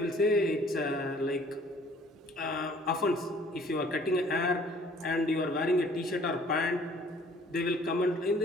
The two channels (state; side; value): normal; both; correlation 0.55